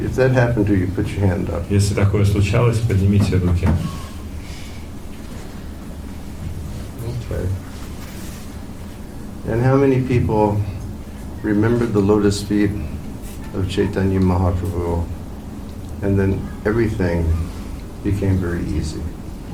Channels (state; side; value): identical; both; correlation 1.00